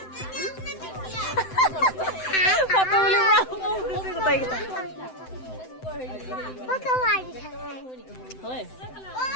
ফটো উলিয়াব গোটেইকেইটা হয়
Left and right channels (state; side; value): late; right; 7.8 ms